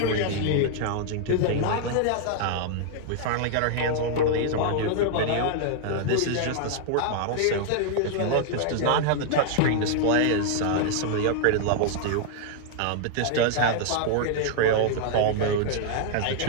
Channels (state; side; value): different; both; correlation -0.01